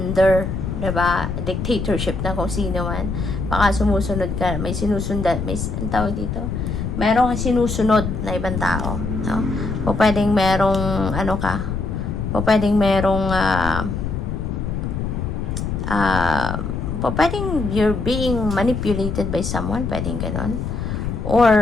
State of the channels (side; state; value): left; noise; rumble, 3 dB below the sound